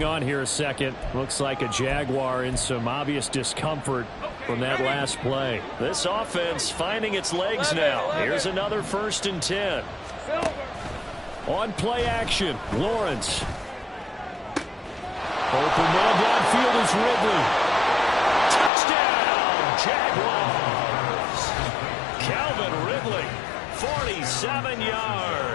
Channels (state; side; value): drops out; right; at 18.7 s